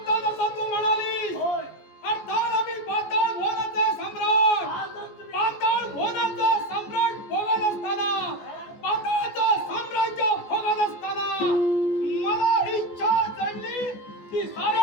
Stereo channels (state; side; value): late; right; 14 ms